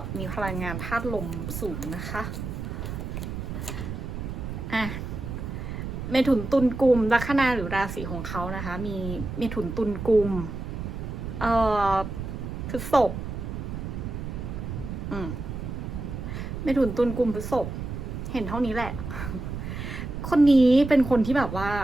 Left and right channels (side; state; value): right; noise; rumble, 6 dB below the sound